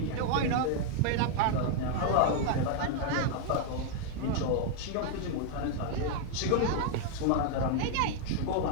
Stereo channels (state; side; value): different; both; correlation 0.00